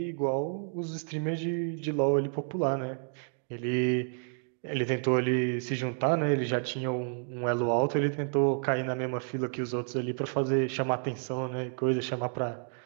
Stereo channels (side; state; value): left; silent; 58 dB below the other